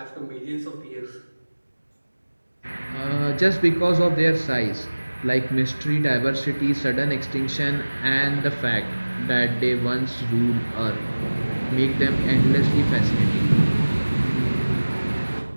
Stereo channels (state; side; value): inverted; both; correlation -1.00